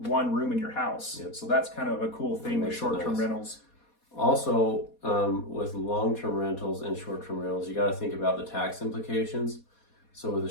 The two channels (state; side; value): late; right; 4.2 ms